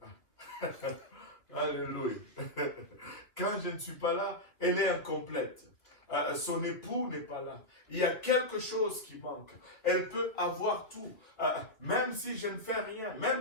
Alléluia. Quand je ne suis pas là, elle est incomplète. Son époux n'est pas là. Il y a quelque chose qui manque. Elle peut avoir tout. Même si je ne fais rien,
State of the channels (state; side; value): late; right; 2.4 ms